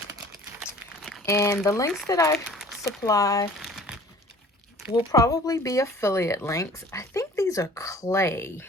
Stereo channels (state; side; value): normal; both; correlation 0.48